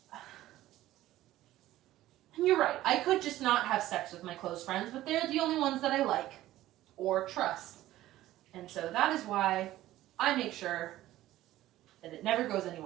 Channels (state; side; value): quieter; left; 15.0 dB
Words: you're right, I could just not have sex with my close friends, but they're the only ones that I like or trust. And so that is why I make sure that it never goes